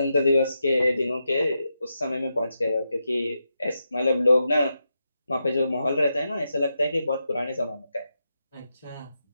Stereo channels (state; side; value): inverted; both; correlation -0.86